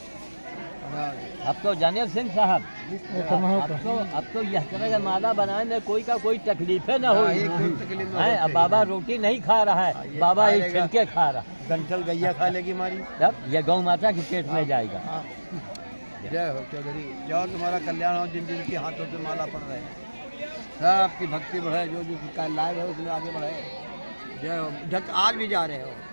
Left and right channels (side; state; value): both; inverted; correlation -1.00